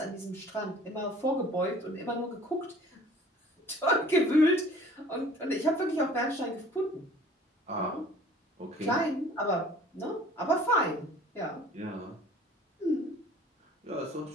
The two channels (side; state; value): both; normal; correlation 0.50